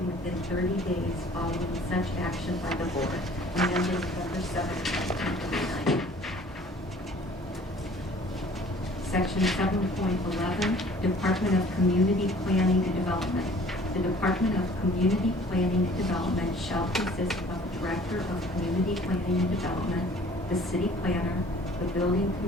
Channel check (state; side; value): normal; both; correlation 0.52